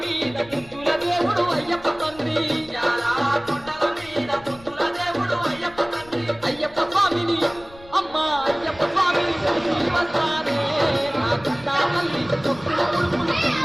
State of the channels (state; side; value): noise; left; rumble, 22 dB below the sound